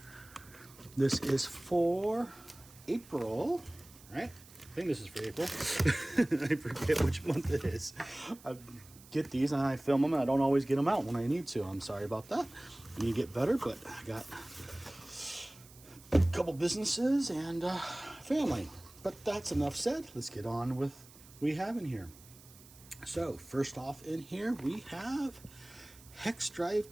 This is for April, right? I think this is for April. I forget which month it is. I get these and I film them and I don't always get them out when I need to. I'm sorry about that. I need to get better, but I got a couple businesses and family. But that's enough said. Let's get on with what we have in here. So first off in here we have Hex Drive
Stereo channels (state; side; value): noise; right; hiss, 22 dB below the sound